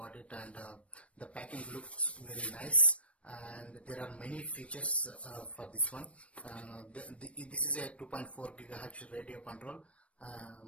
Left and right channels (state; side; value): late; right; 0.063 ms